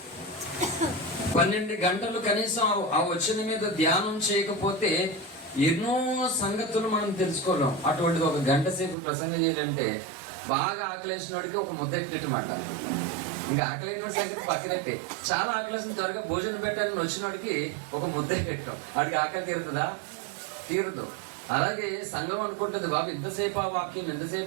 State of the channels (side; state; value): left; drops out; at 9.0 s